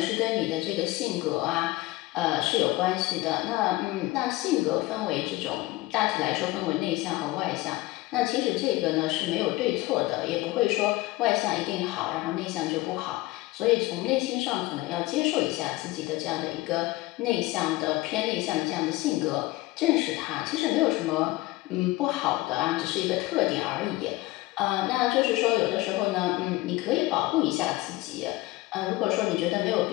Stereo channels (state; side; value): quieter; right; 19.5 dB